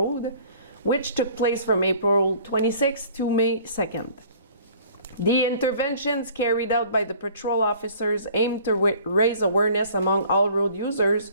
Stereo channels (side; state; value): both; inverted; correlation -0.51